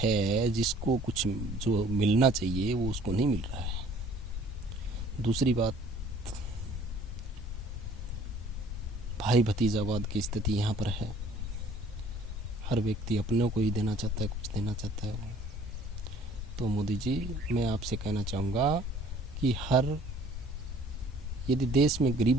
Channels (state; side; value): normal; both; correlation 0.54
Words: जिसको कुछ जो मिलना चाहिए, वो उसको नहीं मिल रहा है। दूसरी बात, भाई भतीजावाद की स्थिति यहाँ पर है। हर व्यक्ति अपनों को ही देना चाहता है, कुछ देना चाहता है। तो मोदी जी, मैं आपसे कहना चाहूँगा कि यदि देश में